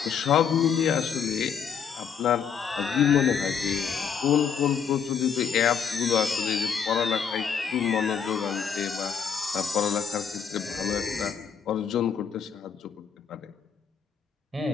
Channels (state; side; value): quieter; right; 7.1 dB